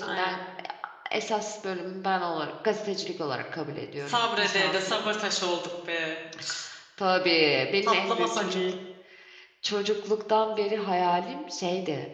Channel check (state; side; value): identical; both; correlation 1.00